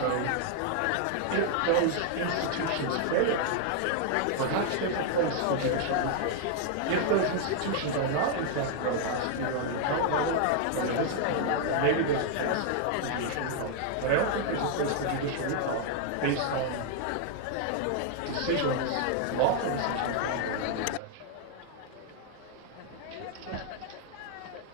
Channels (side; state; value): both; different; correlation 0.00